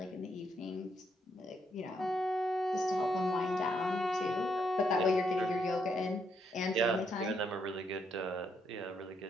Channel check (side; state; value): both; normal; correlation 0.76